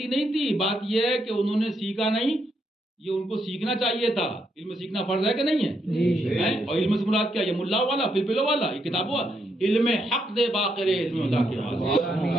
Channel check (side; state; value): both; normal; correlation 0.78